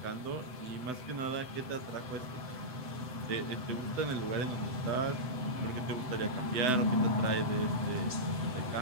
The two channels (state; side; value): late; left; 7.9 ms